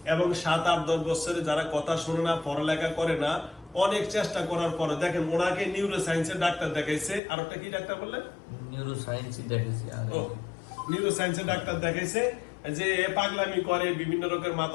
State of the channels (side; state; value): right; drops out; at 7.2 s